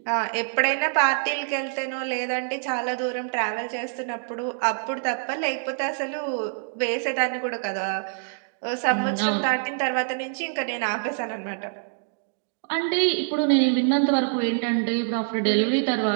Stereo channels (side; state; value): left; silent; digital silence